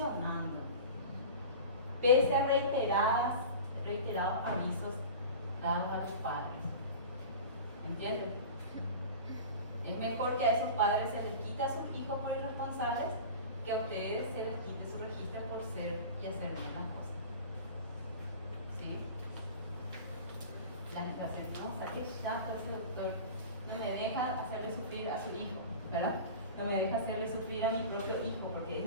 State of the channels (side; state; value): both; inverted; correlation -0.34